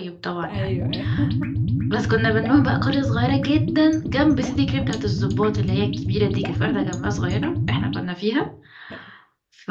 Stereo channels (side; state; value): both; identical; correlation 1.00